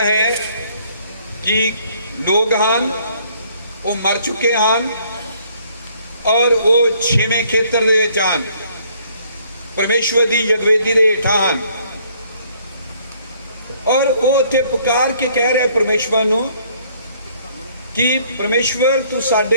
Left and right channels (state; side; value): inverted; both; correlation -0.63